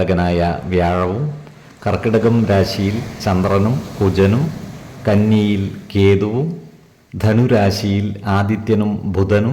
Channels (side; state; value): both; identical; correlation 1.00